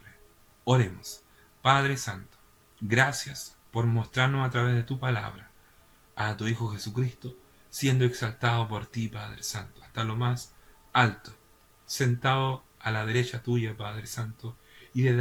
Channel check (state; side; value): identical; both; correlation 1.00